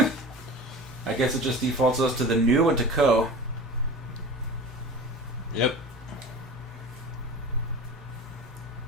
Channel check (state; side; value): normal; both; correlation 0.35